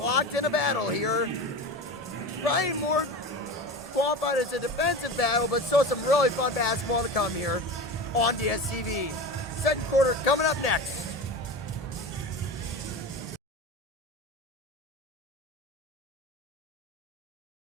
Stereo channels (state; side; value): normal; both; correlation 0.28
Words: in a battle here. Probably more qualified as a defensive battle, but still some really fun basketball to come here on DSTV. Second quarter coming up next.